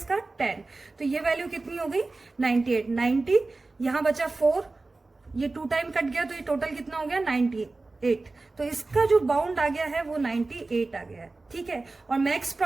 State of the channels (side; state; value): left; quieter; 3.4 dB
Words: 10, तो ये वैल्यू कितनी हो गई 98। 90 यहाँ बचा 4, ये 2 टाइम कट गया तो ये टोटल कितना हो गया 98। तो इसका जो बाउंड आ गया है वो 98 आ गया है। ठीक है, और मैक्स